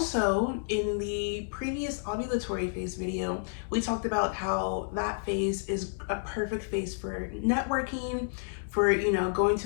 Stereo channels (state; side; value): silent; right; digital silence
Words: in the previous ovulatory phase video, we talked about how that phase is a perfect phase for networking, for, going